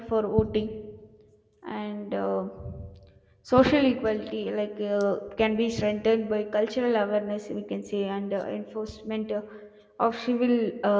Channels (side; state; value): both; identical; correlation 1.00